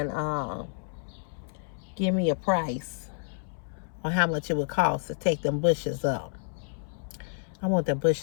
give me a price on how much it would cost to take them bushes up. I want them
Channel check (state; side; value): silent; right; 58 dB below the other